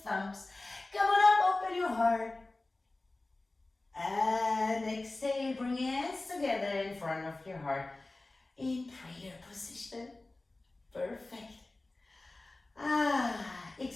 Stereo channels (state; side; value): quieter; right; 3.0 dB